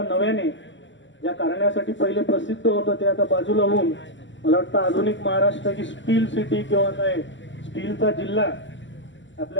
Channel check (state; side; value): late; right; 0.54 ms